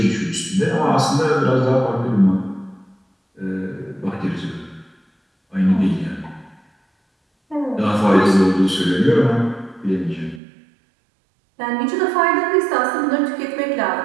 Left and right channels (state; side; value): drops out; left; at 10.4 s